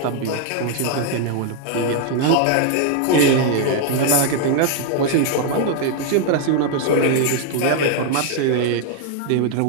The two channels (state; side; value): different; both; correlation 0.00